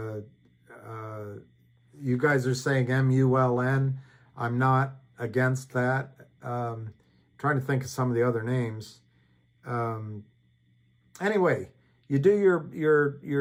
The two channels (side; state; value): both; identical; correlation 1.00